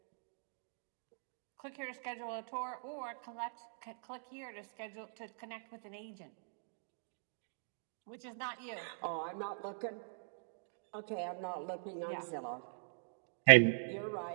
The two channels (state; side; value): silent; left; digital silence